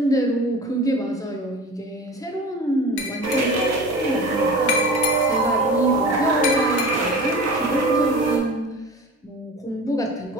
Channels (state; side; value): normal; both; correlation 0.36